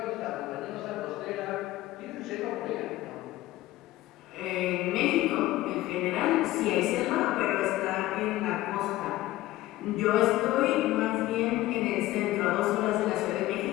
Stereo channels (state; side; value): quieter; right; 16.6 dB